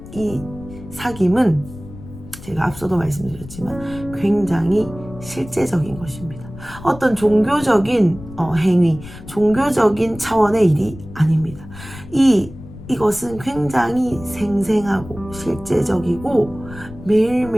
이 사귐은 제가 앞서도 말씀드렸지만 굉장히 실제적인 것입니다. 어떤 종교적인 행위, 종교적인 차원의 일이 아닙니다. 이것은 굉장히 생생하고 실제적이고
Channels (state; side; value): noise; left; rumble, 16 dB below the sound